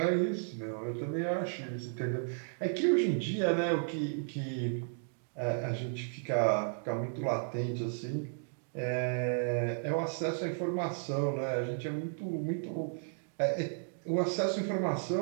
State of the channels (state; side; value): silent; left; digital silence